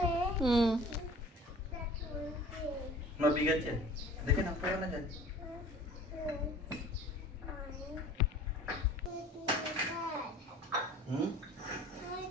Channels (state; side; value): normal; both; correlation 0.46